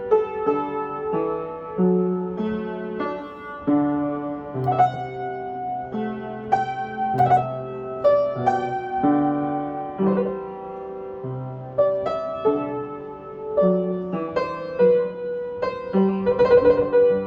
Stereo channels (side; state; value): both; identical; correlation 1.00